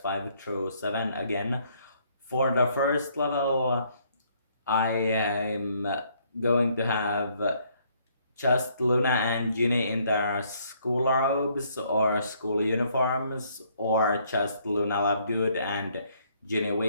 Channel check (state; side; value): inverted; both; correlation -0.67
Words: through 7 again. For the first level, I am going to have just Luna and Ginny in their school robes or school uniforms, or just Luna Lovegood and Ginny